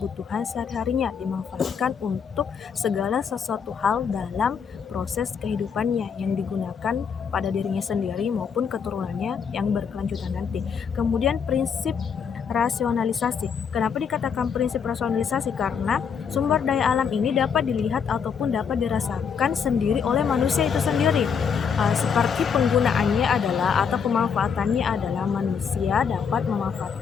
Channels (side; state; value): right; quieter; 6.7 dB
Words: sehari-harinya, dimanfaatkan untuk segala sesuatu hal dalam proses kehidupannya yang digunakan pada dirinya sendiri maupun keturunannya yang berkelanjutan nanti. Kemudian prinsip rasionalisasi. Kenapa dikatakan prinsip rasionalisasi? Karena sumber daya alam ini dapat dilihat ataupun dapat dirasakan sendiri oleh manusia itu sendiri. Seperti penggunaannya adalah atau pemanfaatannya adalah manusia dapat